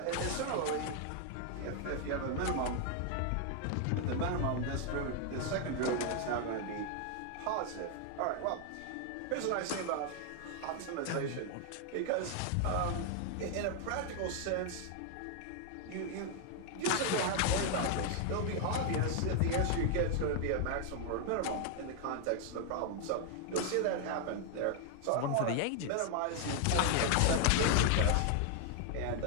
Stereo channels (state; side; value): different; both; correlation 0.00